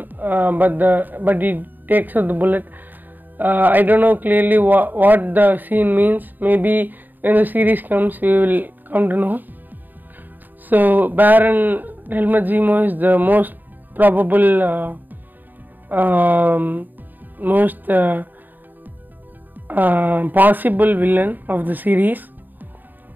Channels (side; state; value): left; late; 0.088 ms